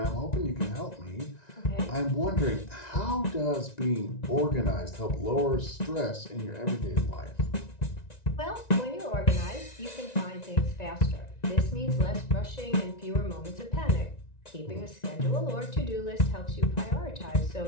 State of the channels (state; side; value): late; right; 1.9 ms